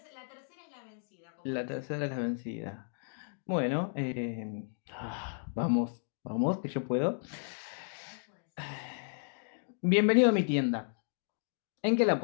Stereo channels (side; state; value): right; silent; digital silence